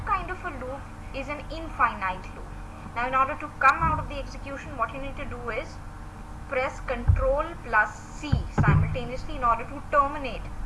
kind of a loop is an infinite loop. Now in order to come out of the execution, what you need to do is press Ctrl plus C simultaneously in order to terminate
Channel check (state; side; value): identical; both; correlation 1.00